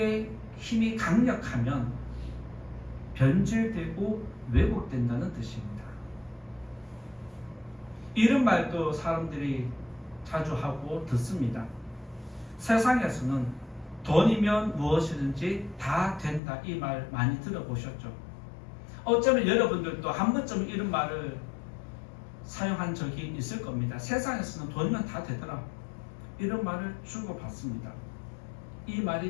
힘이 강력하면 변질되고 왜곡된다는 뜻입니다. 이런 말도 사람들이 자주 하고 듣습니다. 세상에서는 돈이면 무엇이든지 다 된다, 이 말 많이 들어보셨죠? 어쩌면 여러분들도 한 번쯤 이런 말을 사용한 적이 있을 겁니다. 세상에서는 돈이면 다 되더라, 이런 말을 주고받습니다. 이 말이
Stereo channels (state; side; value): drops out; right; at 16.4 s